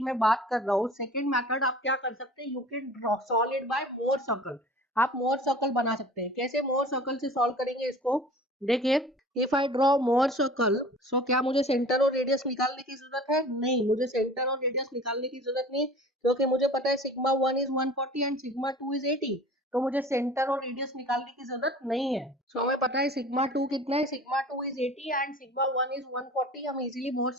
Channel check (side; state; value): both; normal; correlation 0.43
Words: मैं बात कर रहा हूँ, सेकंड मेथड आप क्या कर सकते हैं, you can draw solve it by more circle. आप मोर सर्कल बना सकते हैं। कैसे मोर सर्कल से सॉल्व करेंगे इसको, देखिए if I draw Mohr circle, so क्या मुझे सेंटर और रेडियस निकालने की जरूरत है? नहीं, मुझे सेंटर और रेडियस निकालने की जरूरत नहीं, क्योंकि मुझे पता है sigma 1 is 140 and sigma 2 is 80, तो मुझे सेंटर और रेडियस निकालने की जरूरत नहीं है। सो हमें पता है सिग्मा 2 कितना है, sigma 2 is 80 and sigma 1 is 140। हम इजीली मोर